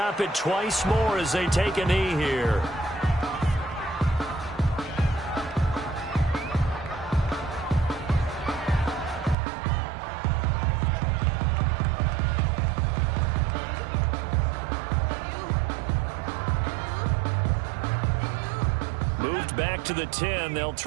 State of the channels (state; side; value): drops out; left; at 9.3 s